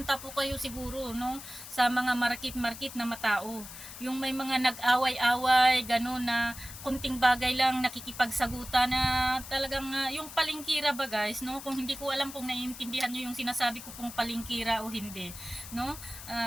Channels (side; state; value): left; noise; hiss, 13 dB below the sound